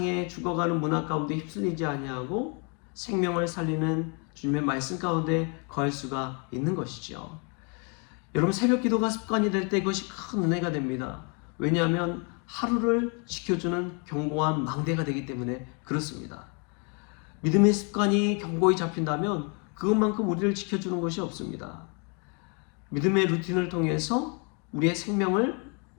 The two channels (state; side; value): quieter; right; 36.0 dB